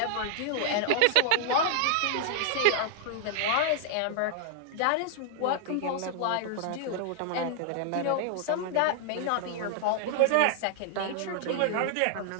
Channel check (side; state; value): both; different; correlation -0.01